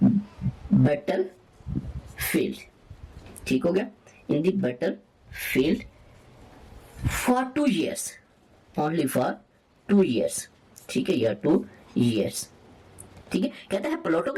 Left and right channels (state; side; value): identical; both; correlation 1.00